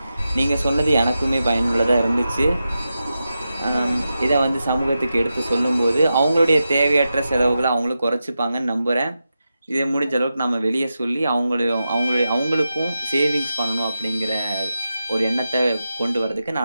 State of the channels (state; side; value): inverted; both; correlation -0.90